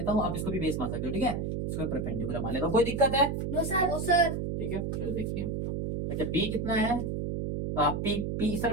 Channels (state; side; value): noise; right; hum, 2 dB below the sound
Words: हूँ, आप इसको भी बेस मान सकते हो, ठीक है। इसको परपेंडिकुलर मान लेता हूँ, कोई दिक्कत है? No sir. ठीक है, चलो देखते हैं। अच्छा बी कितना है, पी पी इस